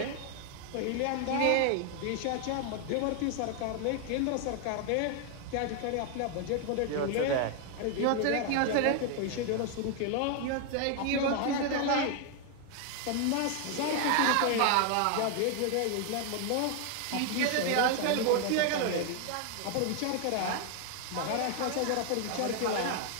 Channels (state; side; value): different; both; correlation 0.01